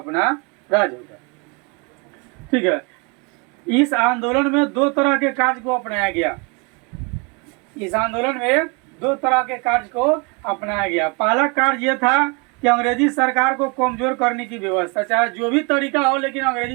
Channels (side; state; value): left; quieter; 30.8 dB